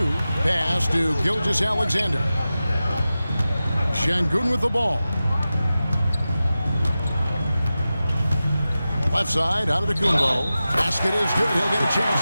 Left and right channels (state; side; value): inverted; both; correlation -0.94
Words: Pass to Gilgeous-Alexander. Şengün with the ball. Left side, Antetokounmpo. Basket is good. He'll get a chance